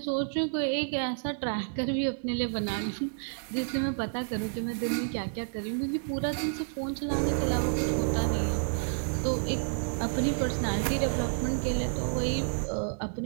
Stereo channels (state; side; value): silent; left; digital silence